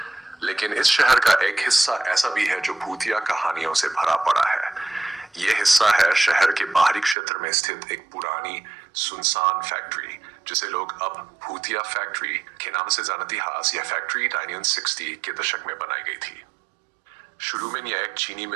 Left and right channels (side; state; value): left; drops out; at 7.2 s